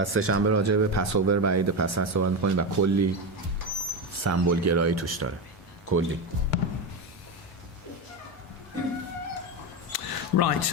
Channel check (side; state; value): both; normal; correlation 0.14